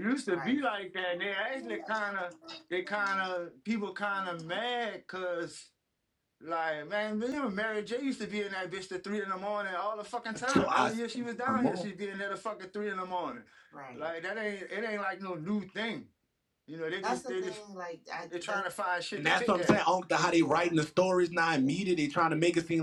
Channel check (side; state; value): both; identical; correlation 1.00